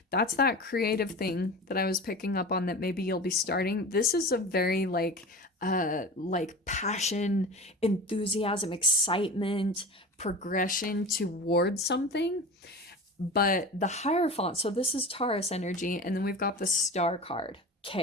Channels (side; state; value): both; normal; correlation 0.33